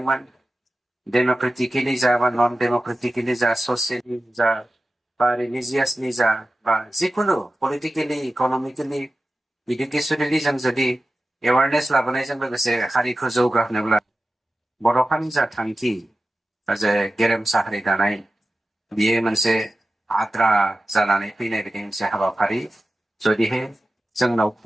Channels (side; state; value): both; normal; correlation 0.94